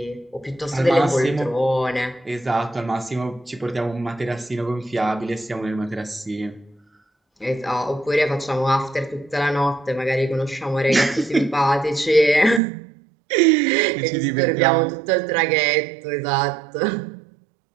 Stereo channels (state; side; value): drops out; left; at 12.6 s